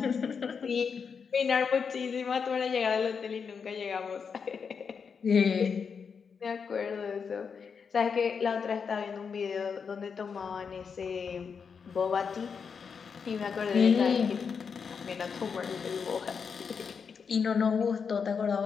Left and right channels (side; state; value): right; quieter; 6.1 dB